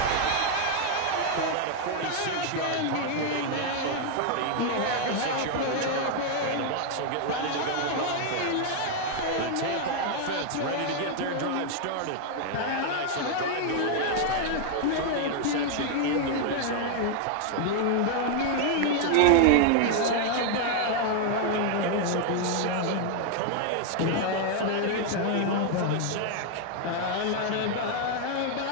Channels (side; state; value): both; different; correlation 0.00